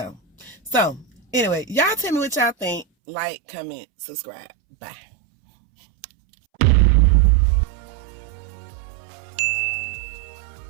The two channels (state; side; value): drops out; left; at 2.9 s